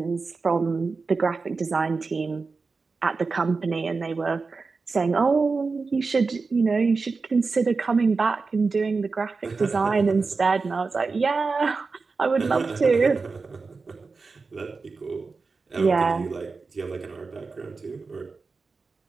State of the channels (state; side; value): quieter; left; 4.3 dB